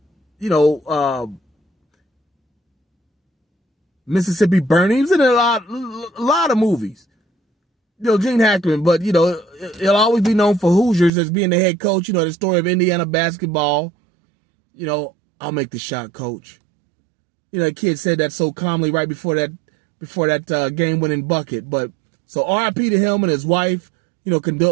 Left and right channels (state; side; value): drops out; left; at 11.1 s